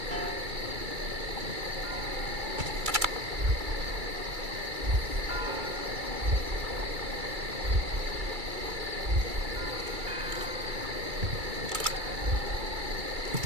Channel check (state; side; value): late; left; 2.3 ms